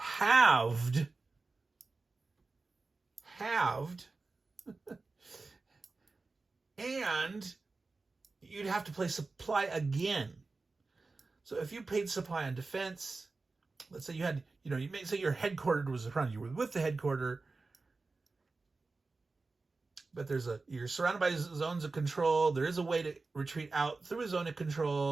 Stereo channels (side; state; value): left; quieter; 3.8 dB